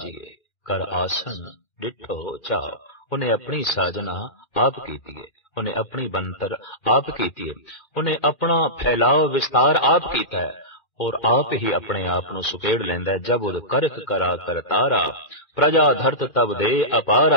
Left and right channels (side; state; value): right; late; 2.4 ms